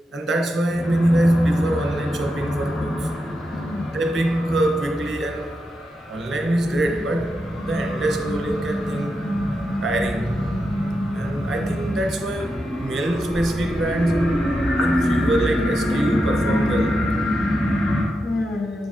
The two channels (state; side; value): normal; both; correlation 0.87